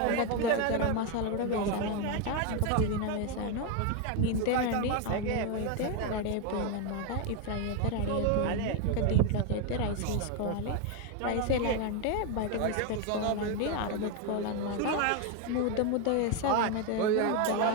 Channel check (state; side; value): different; both; correlation 0.02